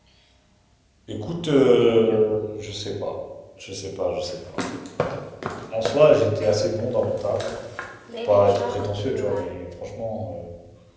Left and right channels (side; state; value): both; identical; correlation 1.00